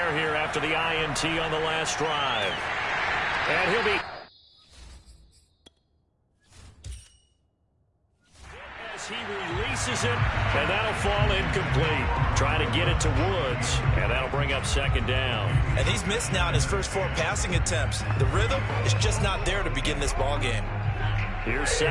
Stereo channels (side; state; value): both; identical; correlation 1.00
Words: here after the INT on the last drive. And he'll be... As he releases it, and that'll fall incomplete. Trying to get it to Woods, and that'll bring up 2nd down. And he's missed now in his first 4 passing attempts. The rhythm is just not there to begin this ball game. Here's